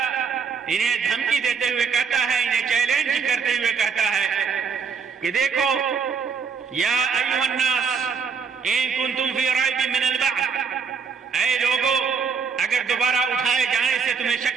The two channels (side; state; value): left; quieter; 6.1 dB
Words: انہیں دھمکی دیتے ہوئے کہتا ہے، انہیں چیلنج کرتے ہوئے کہتا ہے کہ دیکھو یا ایھا الناس ان کنتم فی ریب من البعث، اے لوگو اگر دوبارہ اٹھائے جانے سے تمہیں